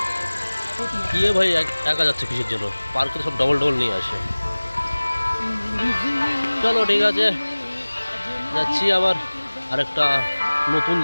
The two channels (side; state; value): both; inverted; correlation -1.00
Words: কি ভাই একা যাচ্ছে কিসের জন্য? পার্কে সব ডবল ডবল নিয়ে আসে। চলো ঠিক আছে, যাচ্ছি আবার আরেকটা নতুন